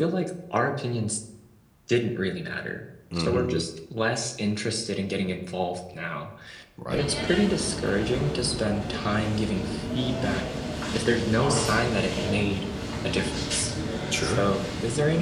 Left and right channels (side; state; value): both; identical; correlation 1.00